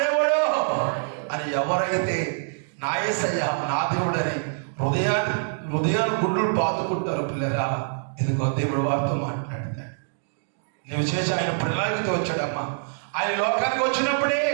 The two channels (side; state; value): left; silent; digital silence